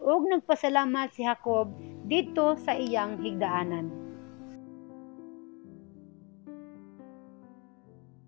nagpasalamat si Jacob dito sa iyang higdaanan.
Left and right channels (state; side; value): quieter; right; 30.8 dB